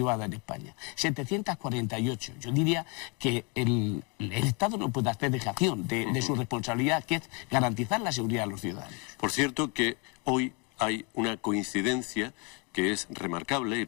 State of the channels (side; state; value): right; quieter; 32.9 dB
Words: en España. 748. Yo diría que el Estado no puede hacer dejación de su responsabilidad, que es garantizar la seguridad de los ciudadanos. Por cierto que hoy hay una coincidencia que es remarcable, y